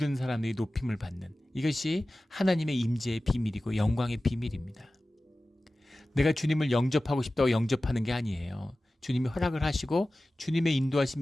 사람들이 높임을 받는, 이것이 하나님의 임재의 비밀이고 영광의 비밀입니다. 내가 주님을 영접하고 싶다고 영접하는 게 아니에요. 주님이 허락을 하시고 주님의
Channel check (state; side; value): normal; both; correlation 0.96